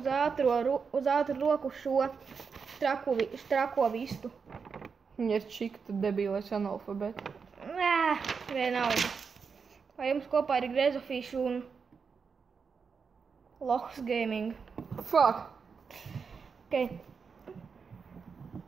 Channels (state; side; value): quieter; left; 5.7 dB